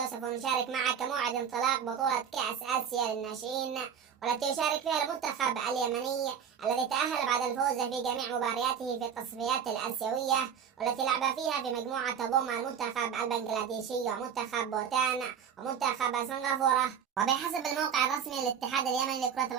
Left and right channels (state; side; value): quieter; left; 7.8 dB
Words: سوف نشارك معك موعد انطلاق بطولة كأس آسيا للناشئين، والتي يشارك فيها المنتخب اليمني الذي تأهل بعد الفوز في جميع مبارياته في التصفيات الآسيوية، والتي لعب فيها في مجموعة تضم المنتخب البنغلاديشي ومنتخب بوتان ومنتخب سنغافورة. وبحسب الموقع الرسمي للاتحاد اليمني لكرة